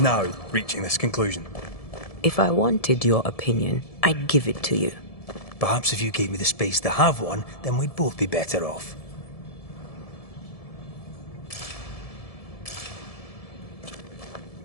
reaching this conclusion? If I wanted your opinion, I'd give it to you. Perhaps if you gave me the space to have one, then we'd both be better off.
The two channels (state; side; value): late; right; 1.7 ms